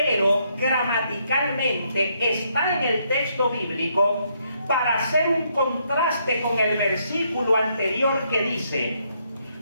gramaticalmente está en el texto bíblico para hacer un contraste con el versículo anterior que dice:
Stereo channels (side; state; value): both; inverted; correlation -0.74